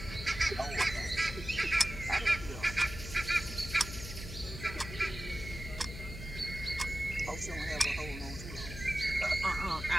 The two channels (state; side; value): noise; left; hum, 10 dB below the sound